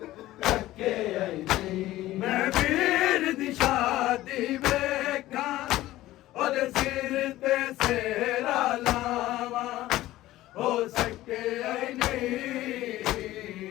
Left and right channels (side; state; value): right; quieter; 15.9 dB